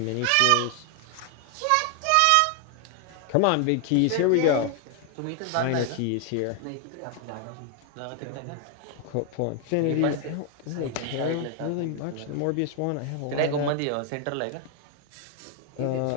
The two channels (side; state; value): both; different; correlation 0.00